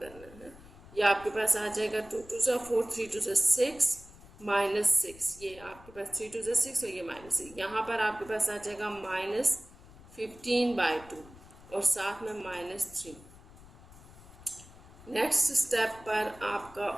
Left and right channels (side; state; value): left; noise; rumble, 20 dB below the sound